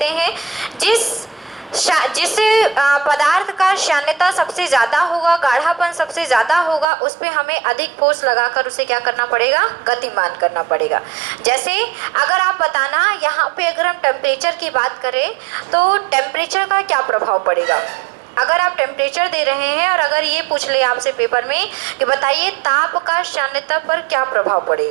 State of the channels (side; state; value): left; drops out; at 6.9 s